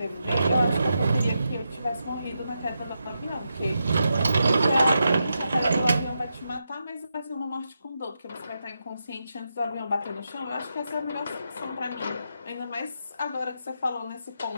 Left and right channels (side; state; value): both; inverted; correlation -0.86